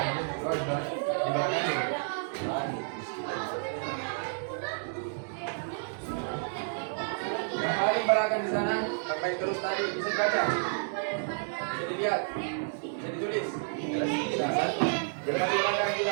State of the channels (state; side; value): silent; left; digital silence